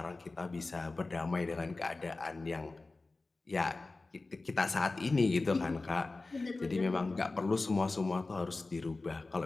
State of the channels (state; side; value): quieter; right; 3.4 dB